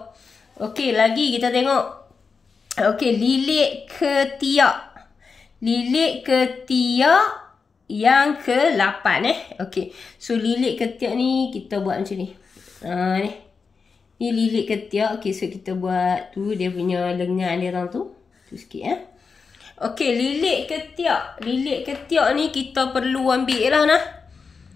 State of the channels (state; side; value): quieter; right; 5.1 dB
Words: Okey, lagi kita tengok. Okey, lilit ketiak. Lilit ketiak yang ke-8 Okey. So lilit ketiak ni kita buat macam ni. Ni. Ni lilit ketiak. Okey, so kita buat tu dia punya lengan dia tu. Tu sikit Okey, lilit ketiak. Lilit ketiak ni kita perlu ambil lah